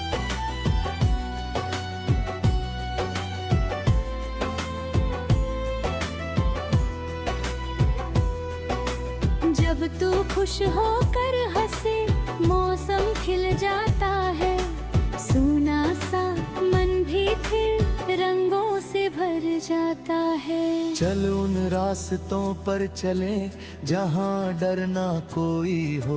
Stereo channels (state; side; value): identical; both; correlation 1.00